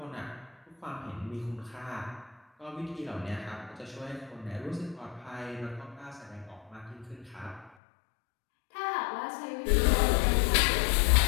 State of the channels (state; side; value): drops out; right; at 7.8 s